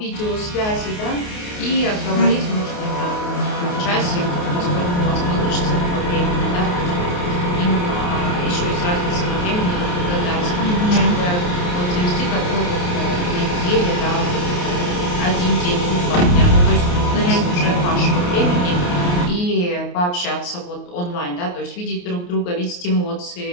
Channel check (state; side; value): late; right; 28 ms